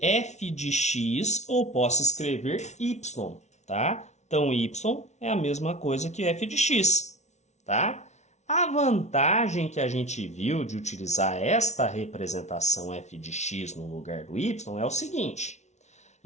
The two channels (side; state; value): right; late; 0.32 ms